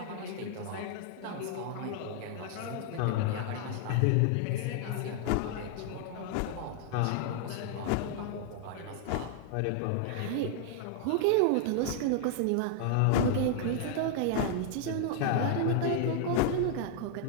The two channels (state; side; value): different; both; correlation 0.00